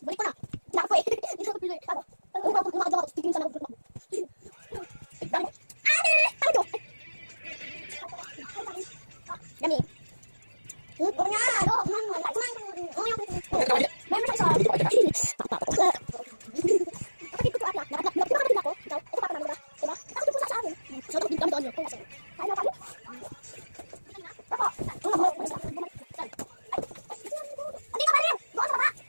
Balik ko na. Lako eh. Hindi ko pili. Ano? Lumakad ako. Tignan sa loob. Dami. Huwag nga! Ano? Meron sa isa. Kapatid ko ata. Nakakapatid ako. Ikaw, ito papa namin, diba? Diba? Nakakapatid po sa amin. So, nakapatid kami doon yun. Kaya na kami. Ako. Hindi ka pa rin! Doon sa baba!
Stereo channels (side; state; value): both; inverted; correlation -1.00